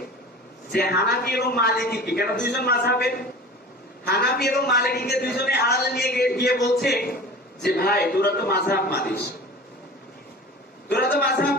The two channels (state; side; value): normal; both; correlation 0.37